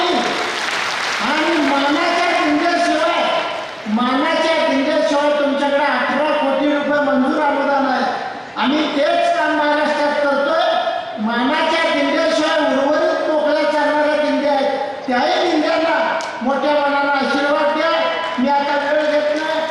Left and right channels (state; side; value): identical; both; correlation 1.00